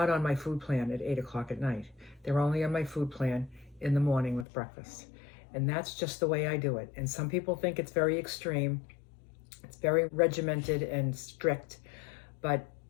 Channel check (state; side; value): drops out; right; at 4.5 s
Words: on my food plan at 8 o'clock at night. They're only on my food plan in the morning with breakfast. And that's just the way I do it. And some people think it's very extreme. It's very regimented and strict. But